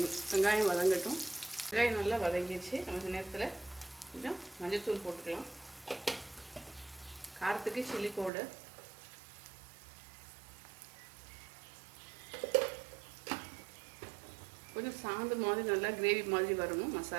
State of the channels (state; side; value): drops out; left; at 8.3 s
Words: வெங்காயம் வதங்கட்டும். வெங்காயம் நல்லா வதங்கிடுச்சு. நம்ம நேரத்தில் கொஞ்சம் மஞ்சள்தூள் போட்டுக்கலாம். காரத்துக்கு சில்லி பவுடர், கொஞ்சம் சாந்து மாதிரி நல்லா கிரேவி மாதிரி வரணும்